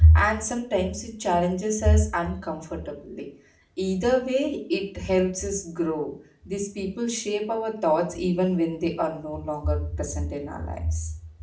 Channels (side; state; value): both; identical; correlation 1.00